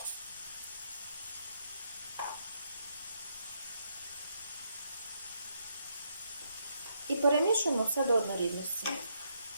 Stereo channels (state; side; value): inverted; both; correlation -0.77